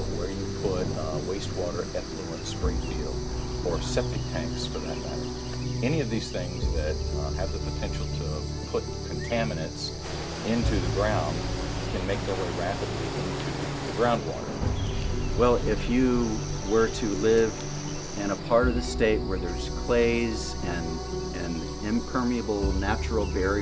where you put wastewater effluent spring field, or septic tanks for that matter. Any of these things that have the potential to put contaminants into the ground can make their way rapidly into the groundwater. Well, if you were to live in a part of the state where there's clays and impermeable natural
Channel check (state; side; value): identical; both; correlation 1.00